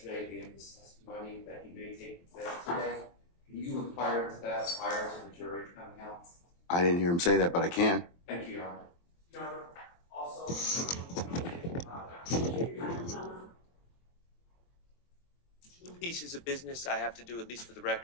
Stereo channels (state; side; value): late; right; 23 ms